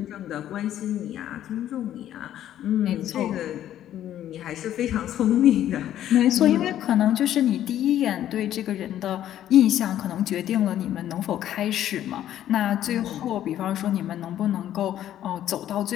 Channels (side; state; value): right; quieter; 11.7 dB